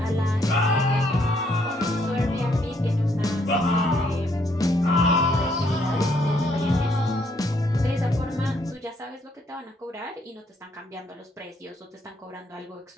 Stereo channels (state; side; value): normal; both; correlation 0.70